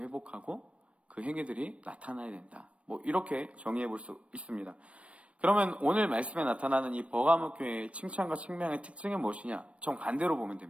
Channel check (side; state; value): left; late; 0.062 ms